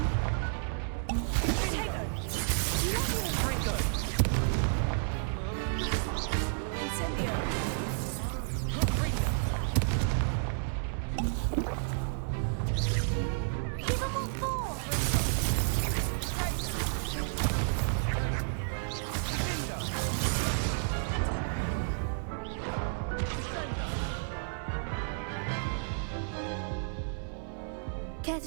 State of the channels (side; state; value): left; silent; 55 dB below the other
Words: Potato. Levio. Confringo. Incendio. Confringo. Give them all four. Care